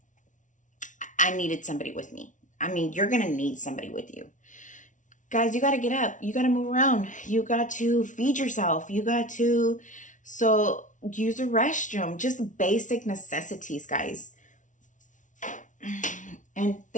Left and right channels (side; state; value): right; late; 0.37 ms